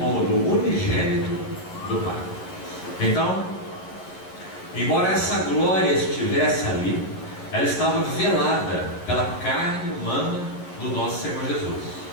do unigênito do Pai. Então, embora essa glória estivesse ali, ela estava velada pela carne humana do nosso Senhor Jesus.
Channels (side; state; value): right; late; 11 ms